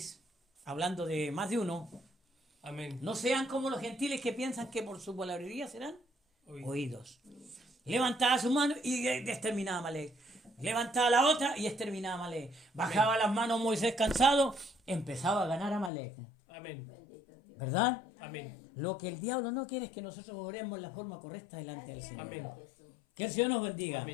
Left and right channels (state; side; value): drops out; right; at 15.9 s